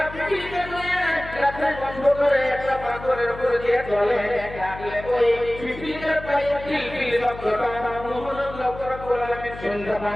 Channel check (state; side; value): noise; left; hum, 13 dB below the sound